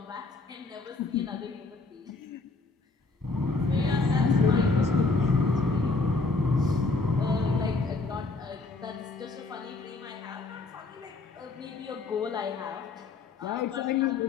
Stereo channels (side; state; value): right; quieter; 3.7 dB